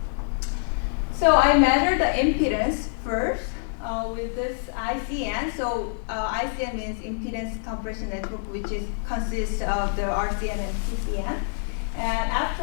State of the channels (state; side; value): silent; right; digital silence